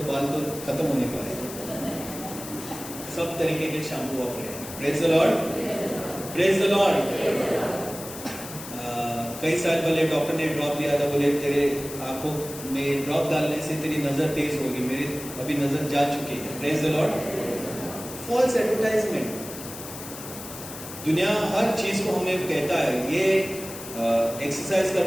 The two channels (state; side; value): noise; left; hiss, 12 dB below the sound